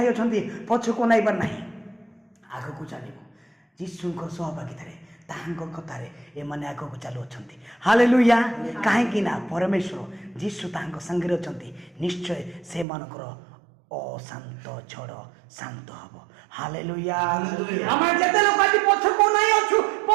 ଅଛନ୍ତି ପଛକୁ ନାଇବାର ନାହିଁ, ଆଗକୁ ଚାଲିବ। ଯୀଶୁଙ୍କ ସହଭାଗିତାରେ ତାହାଙ୍କ କଥାରେ ଏମାନେ ଆଗକୁ ଚାଲୁଅଛନ୍ତି। ହାଲେଲୁୟା। କାହିଁକି ନା ପରମେଶ୍ୱର ଯୀଶୁ ତାହାଙ୍କ ସାଙ୍ଗରେ ଅଛନ୍ତି। ନିଶ୍ଚୟ ସେମାନଙ୍କର ଅଶାନ୍ତ ଝଡ଼ ଶାନ୍ତ ହବ। ହାଲେଲୁୟା। ଆମେ ଯେତେ ଲୋକ ଆଜି ପଛକୁ ନାଇଁ ଅଛୁ,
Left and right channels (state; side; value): drops out; left; at 12.9 s